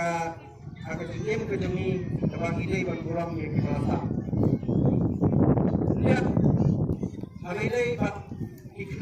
akan diam ke demi tebang ide ban buram yang kita lihat hari ini bat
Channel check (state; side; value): identical; both; correlation 1.00